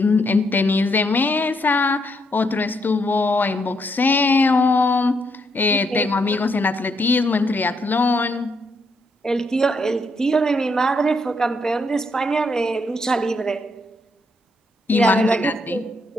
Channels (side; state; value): both; normal; correlation 0.76